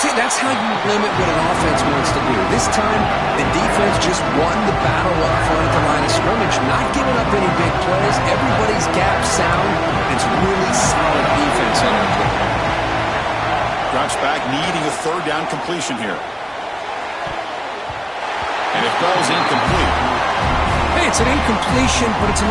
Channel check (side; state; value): both; identical; correlation 1.00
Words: that's how you limit what an offense wants to do. This time, the defense just won the battle up front at the line of scrimmage, not giving up any big plays. Everybody's gap sound. It's really solid defense on that play. Drops back, needing a third down completion here. And it falls incomplete. Hey, it's an incompletion, but it's a